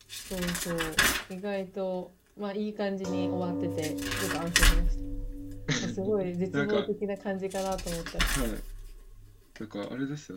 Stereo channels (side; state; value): both; identical; correlation 1.00